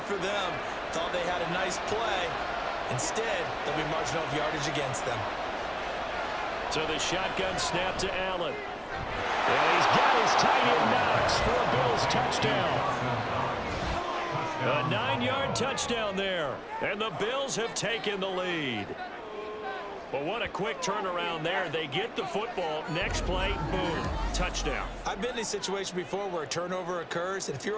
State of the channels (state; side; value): identical; both; correlation 1.00